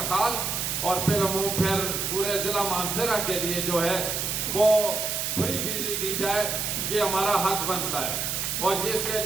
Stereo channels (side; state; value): right; noise; hiss, 1 dB below the sound